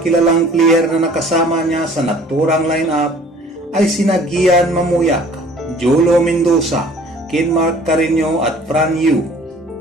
kilalang player na nakasama niya sa naturang lineup ay sina Gian Mamuyak, Jolo Mendoza, Kenmark Carreño at Fran Yu.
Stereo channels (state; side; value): normal; both; correlation 0.52